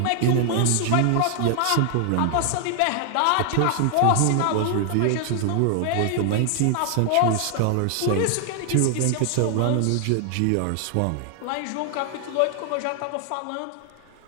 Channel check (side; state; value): both; different; correlation 0.00